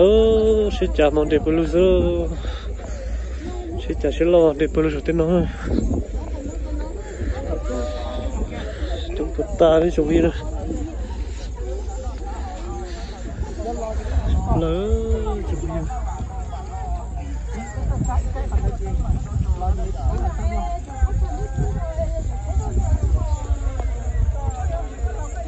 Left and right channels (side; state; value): both; identical; correlation 1.00